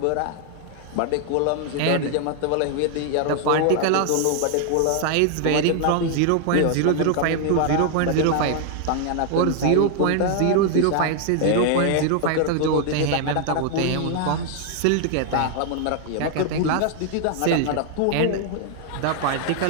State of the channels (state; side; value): different; both; correlation 0.00